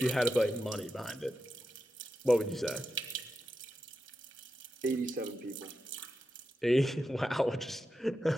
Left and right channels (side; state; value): both; normal; correlation 0.89